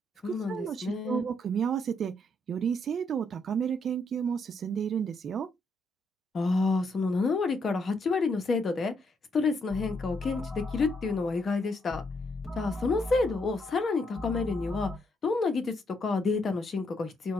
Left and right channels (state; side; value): normal; both; correlation 0.75